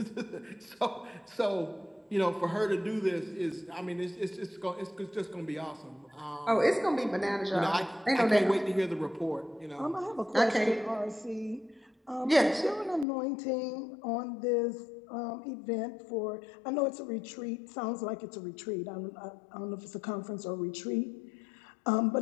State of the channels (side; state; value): right; drops out; at 13.1 s